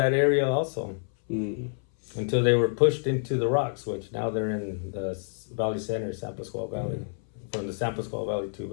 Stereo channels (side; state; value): right; silent; 58 dB below the other